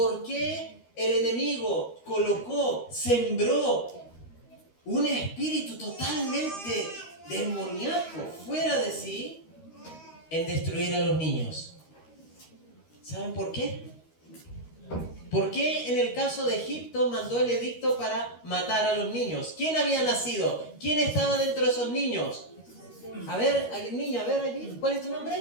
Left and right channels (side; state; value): right; late; 13 ms